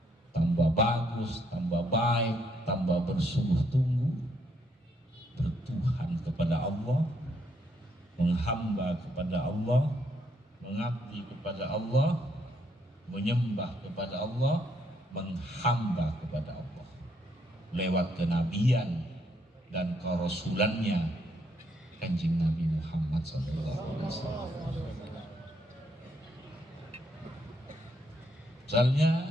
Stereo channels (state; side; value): normal; both; correlation 0.73